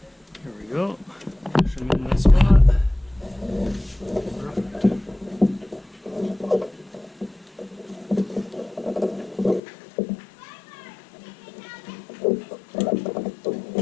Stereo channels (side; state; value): right; drops out; at 9.6 s